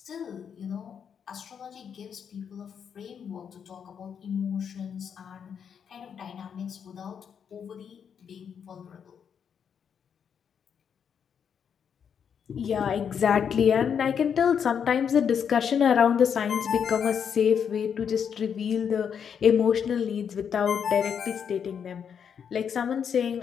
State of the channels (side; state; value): right; quieter; 7.5 dB